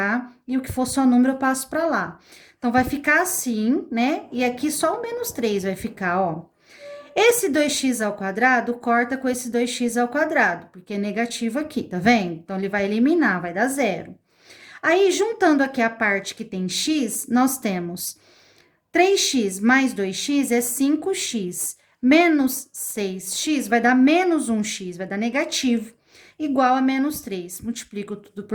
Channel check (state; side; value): identical; both; correlation 1.00